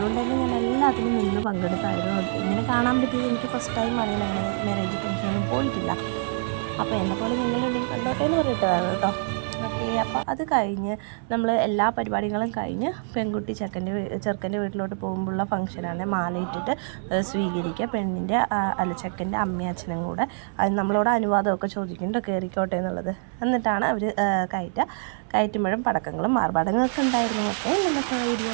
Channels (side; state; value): left; silent; 61 dB below the other